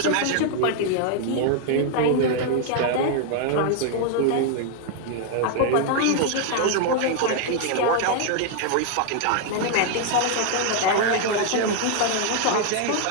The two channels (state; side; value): different; both; correlation 0.00